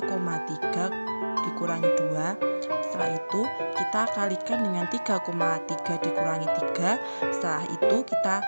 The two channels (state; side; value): inverted; both; correlation -1.00